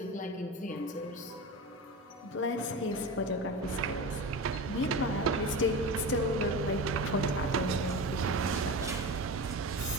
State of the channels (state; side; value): normal; both; correlation 0.27